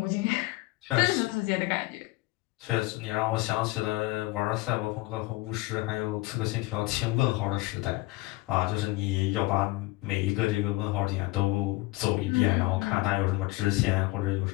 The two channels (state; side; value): quieter; right; 21.0 dB